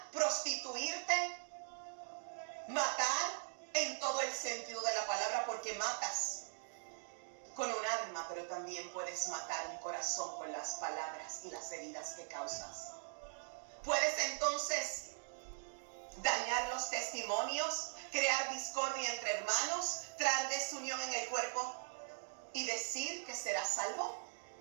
prostituirte, matar en todo el sentido de la palabra, porque matas con un arma, pero también puedes matar un corazón con las palabras y las heridas que causas. Puedes entonces dañar los testimonios, crear discordia entre hermanos, traer desunión en el cuerpo y decir que serás salvo.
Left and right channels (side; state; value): left; silent; digital silence